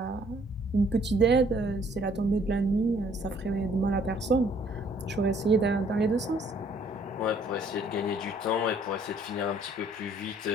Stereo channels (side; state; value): both; normal; correlation 0.61